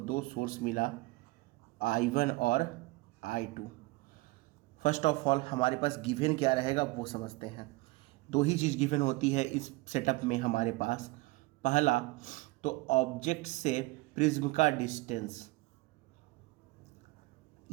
सोर्स मिला I1 और I2। फर्स्ट ऑफ ऑल हमारे पास गिवन क्या रहेगा वो समझते हैं। दो ही चीज़ गिवन होती है इस सेटअप में हमारे पास। पहला तो ऑब्जेक्ट से प्रिज्म का डिस्टेंस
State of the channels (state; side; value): quieter; left; 22.3 dB